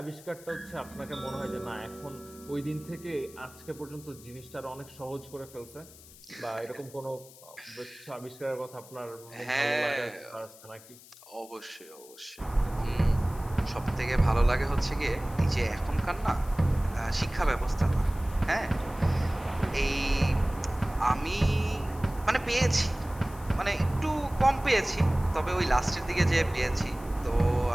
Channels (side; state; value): left; noise; hiss, 21 dB below the sound